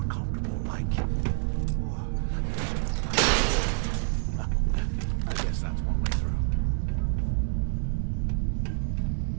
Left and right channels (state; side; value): silent; left; 58 dB below the other